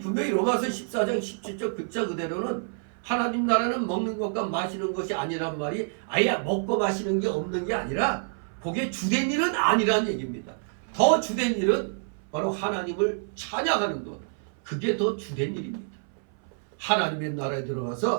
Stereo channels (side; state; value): left; silent; 60 dB below the other